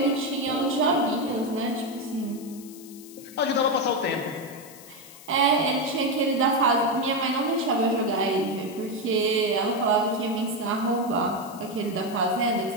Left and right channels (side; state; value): left; noise; hiss, 19 dB below the sound